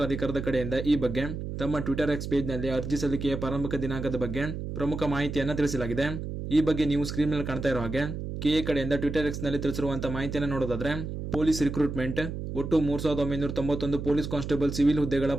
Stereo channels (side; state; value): right; noise; hum, 6 dB below the sound